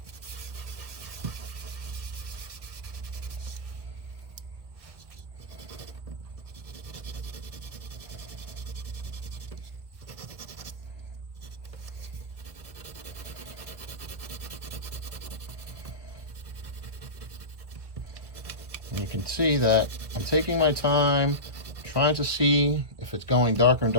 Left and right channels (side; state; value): left; late; 1.6 ms